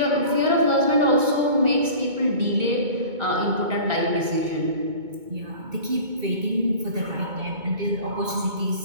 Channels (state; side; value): late; left; 2.2 ms